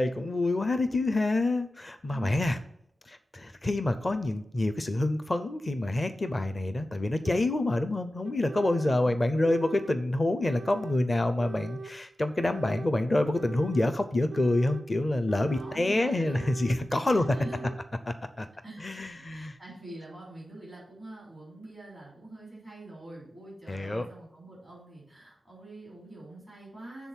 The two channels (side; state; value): both; normal; correlation 0.95